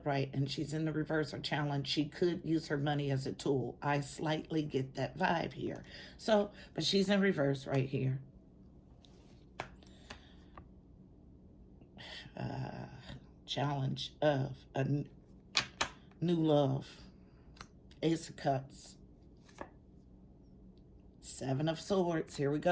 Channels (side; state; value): both; identical; correlation 1.00